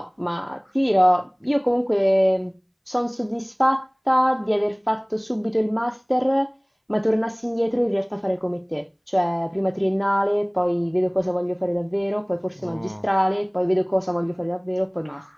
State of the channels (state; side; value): identical; both; correlation 1.00